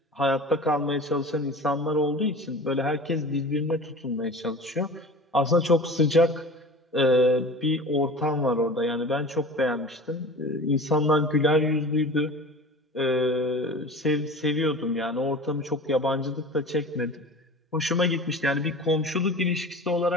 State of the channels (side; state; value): both; normal; correlation 0.37